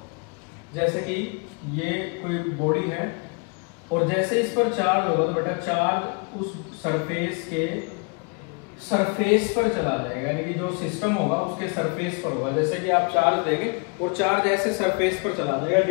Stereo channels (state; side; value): quieter; right; 34.6 dB